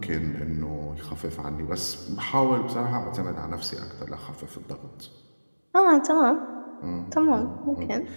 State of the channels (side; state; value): both; inverted; correlation -1.00